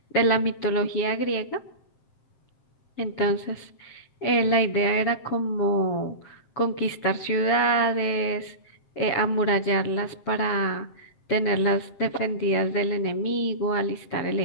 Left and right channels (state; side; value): late; right; 7.6 ms